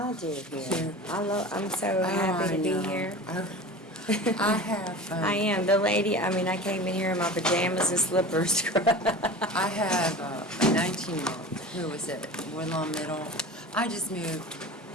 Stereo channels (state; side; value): normal; both; correlation 0.35